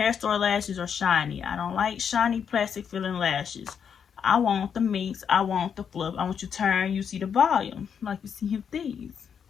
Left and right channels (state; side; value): quieter; right; 7.4 dB